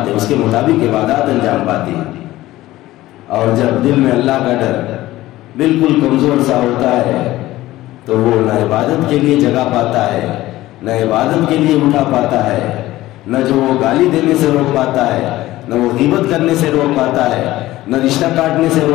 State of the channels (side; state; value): right; quieter; 16.5 dB